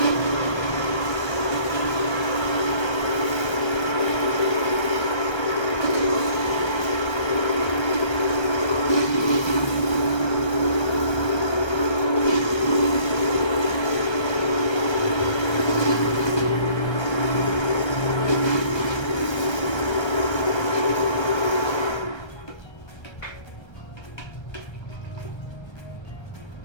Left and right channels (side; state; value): right; late; 1.3 ms